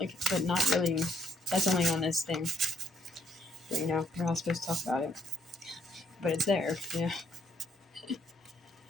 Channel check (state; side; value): normal; both; correlation 0.69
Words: but not really. That's only on this thing. But, you know, we're not supposed to talk about it. But it's there, you know.